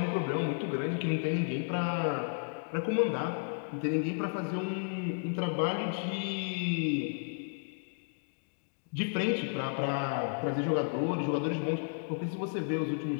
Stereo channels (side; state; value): right; silent; digital silence